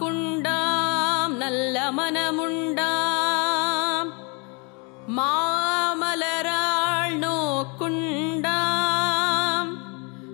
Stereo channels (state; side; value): quieter; right; 32.7 dB